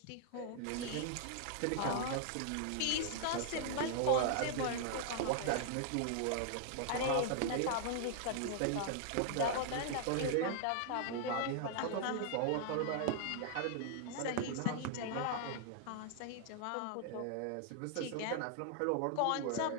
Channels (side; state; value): both; different; correlation 0.00